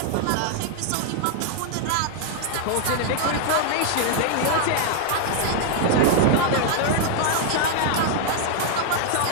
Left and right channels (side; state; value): both; different; correlation 0.00